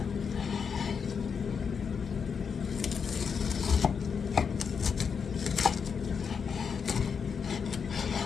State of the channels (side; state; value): right; quieter; 6.3 dB